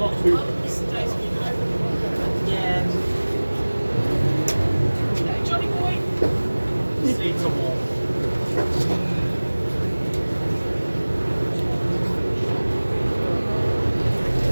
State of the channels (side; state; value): both; inverted; correlation -1.00